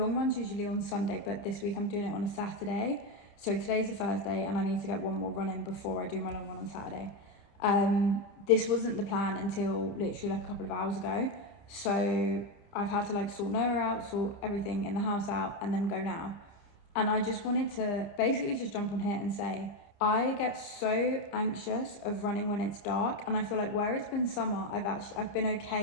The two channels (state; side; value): late; right; 29 ms